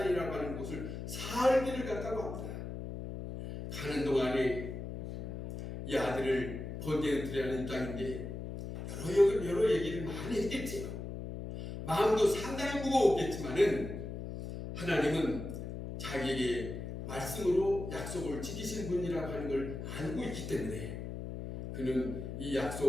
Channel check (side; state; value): left; noise; hum, 7 dB below the sound